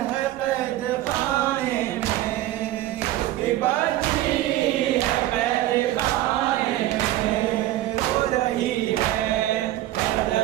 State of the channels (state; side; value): quieter; left; 14.9 dB